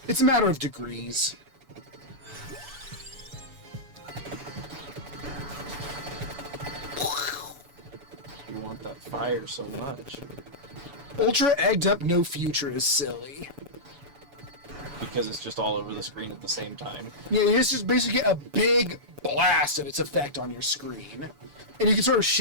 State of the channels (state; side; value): late; left; 7.0 ms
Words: It's a matter of degrees. You want that fire so much. Ultra egged up no future is silly. Because it's just all over the screen at the same time. Yeah, you just basically get a big blast of its effect on your screen. And you can sort of